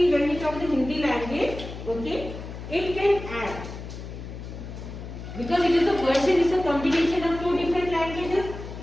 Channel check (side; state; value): left; noise; hum, 10 dB below the sound